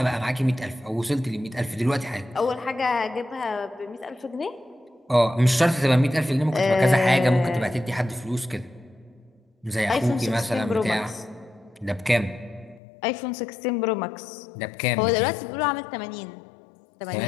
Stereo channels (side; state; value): right; drops out; at 12.8 s